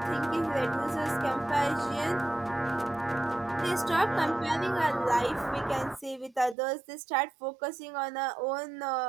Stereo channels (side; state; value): left; drops out; at 6.6 s